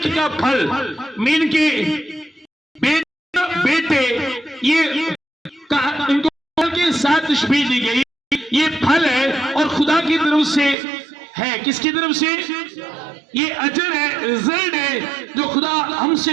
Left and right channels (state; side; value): drops out; left; at 10.8 s